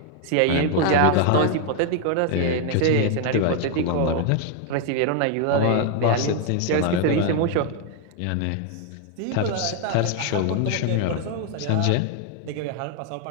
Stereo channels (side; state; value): both; different; correlation 0.00